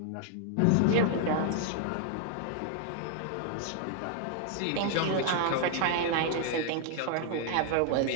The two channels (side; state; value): both; different; correlation 0.00